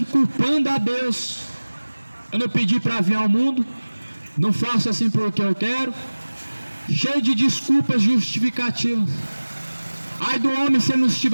culpando a Deus. Eu não pedi para vir ao mundo, não faço assim porque eu quero, cheio de desculpas justificativas. Ai do homem se ele não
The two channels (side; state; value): both; inverted; correlation -1.00